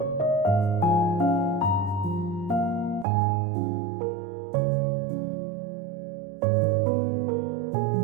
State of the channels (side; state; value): left; drops out; at 3.1 s